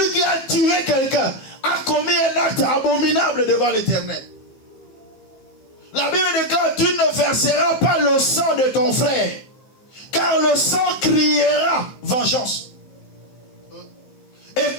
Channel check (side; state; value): right; late; 15 ms